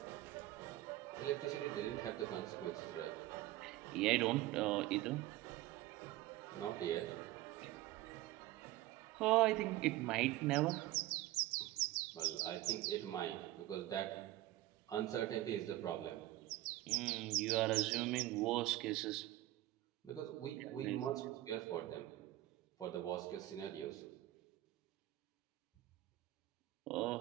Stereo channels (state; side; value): quieter; left; 16.3 dB